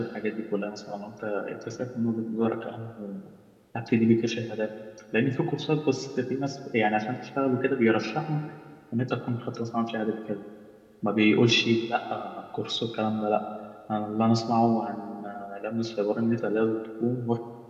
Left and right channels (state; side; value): identical; both; correlation 1.00